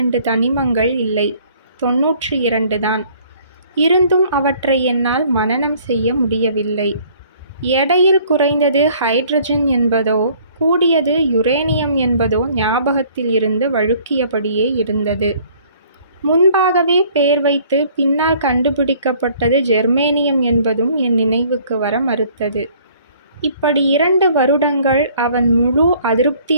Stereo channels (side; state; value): both; inverted; correlation -0.57